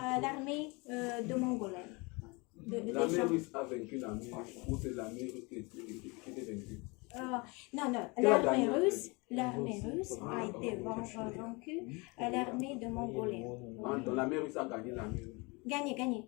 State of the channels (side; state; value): right; quieter; 27.7 dB